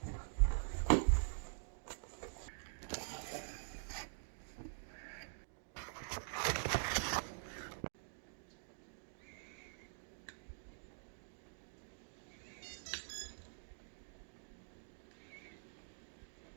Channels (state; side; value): silent; left; digital silence